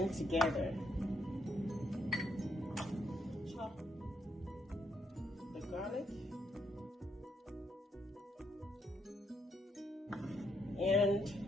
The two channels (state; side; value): normal; both; correlation 0.76